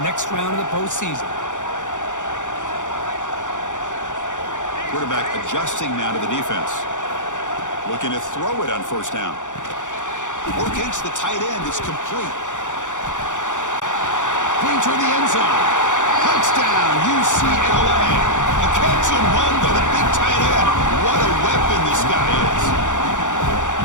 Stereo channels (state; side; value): late; right; 0.86 ms